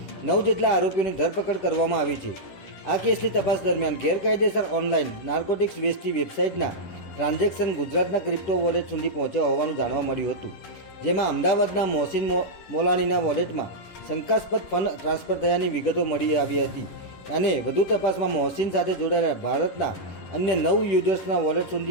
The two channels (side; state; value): right; late; 10 ms